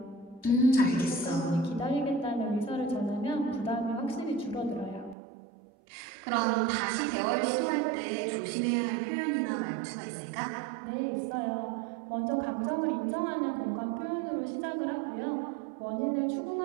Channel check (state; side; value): drops out; left; at 5.2 s